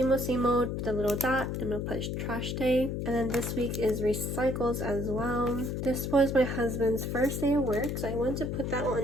old, put the little dot, I'm gonna put trash day. And then this week is recycles as well. This was my husband's first day of work, so I want to put that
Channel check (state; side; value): noise; left; hum, 2 dB below the sound